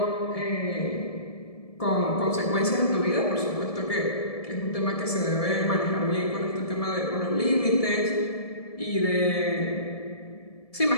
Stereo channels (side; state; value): right; late; 1.7 ms